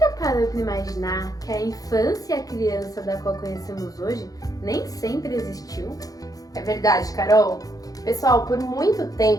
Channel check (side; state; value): right; late; 0.17 ms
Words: parou para imaginar que a infância e a criança da qual conhecemos hoje nem sempre existiu? É verdade, Carol. Pessoal, por muito